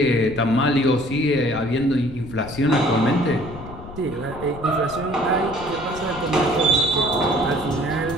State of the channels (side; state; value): left; noise; rumble, 14 dB below the sound